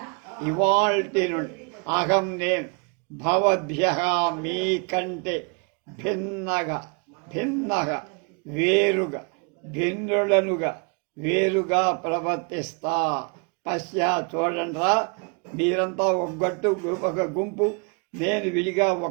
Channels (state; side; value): quieter; left; 35.0 dB